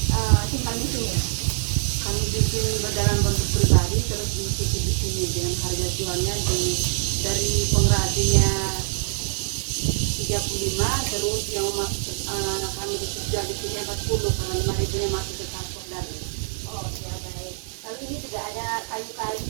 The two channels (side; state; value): left; silent; digital silence